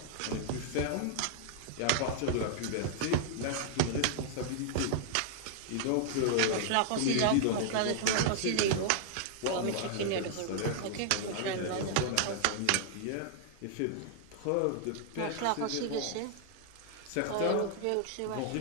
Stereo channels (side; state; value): both; different; correlation -0.01